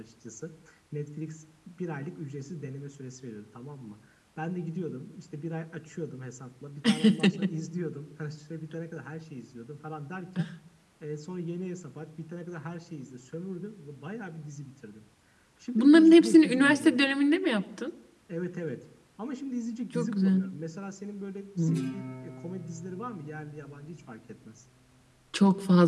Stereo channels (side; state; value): both; identical; correlation 1.00